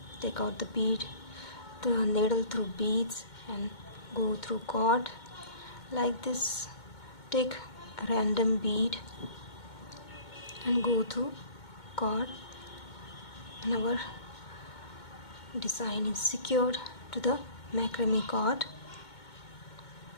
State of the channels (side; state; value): right; late; 2.2 ms